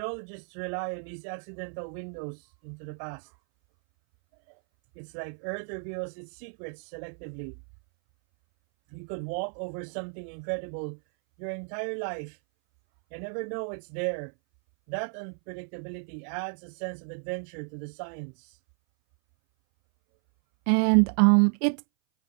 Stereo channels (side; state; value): left; silent; 57 dB below the other